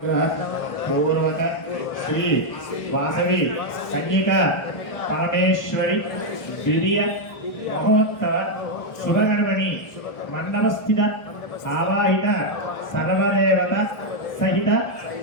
పూర్వక శ్రీ వాసవి కన్యక పరమేశ్వరి ద్వితీయ మహోత్సవ శుభగణమణి మండపస్థిత ఆవాహిత సర్వదేవత సహిత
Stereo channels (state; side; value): late; right; 1.2 ms